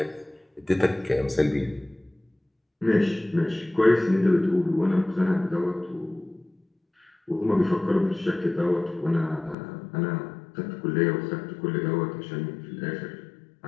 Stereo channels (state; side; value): drops out; right; at 9.6 s